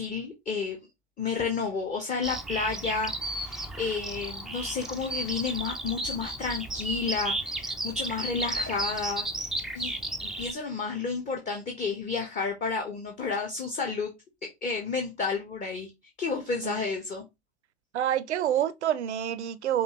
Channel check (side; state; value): both; normal; correlation 0.21